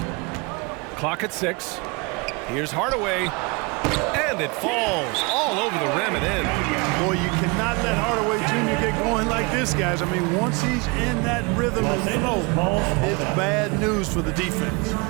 Clock at 6. Here's Hardaway. And it falls all over the rim and in. Boy, you cannot let Hardaway Jr. get going like this, guys. I mean, once he's in that rhythm and flow, it's bad news for the defense.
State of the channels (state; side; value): quieter; left; 28.5 dB